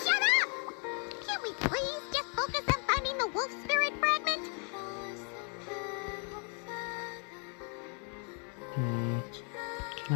up! Can't we please just focus on finding the wolf spirit fragment? Can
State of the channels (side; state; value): right; quieter; 39.6 dB